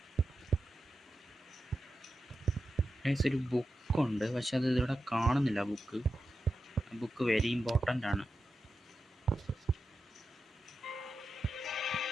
ഒരു ബുക്കുണ്ട്, പക്ഷെ അത് ഇവിടെ കാണുന്നില്ല. ബുക്ക് വെരി ഇമ്പോർട്ടൻ്റ് ആണ്.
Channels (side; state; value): both; normal; correlation 0.90